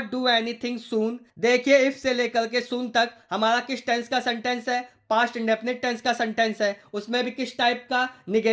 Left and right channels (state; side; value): identical; both; correlation 1.00